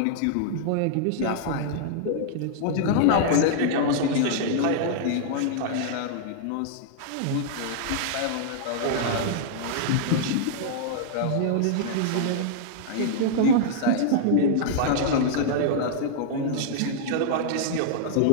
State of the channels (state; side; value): different; both; correlation -0.01